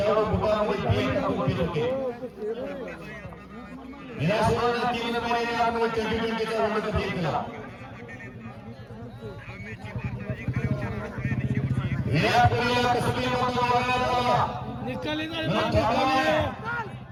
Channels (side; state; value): both; identical; correlation 1.00